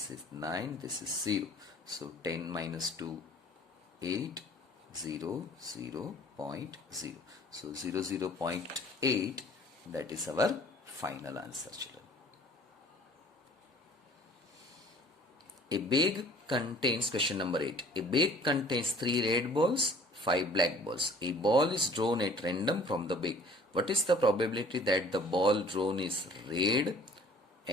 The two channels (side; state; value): both; normal; correlation 0.51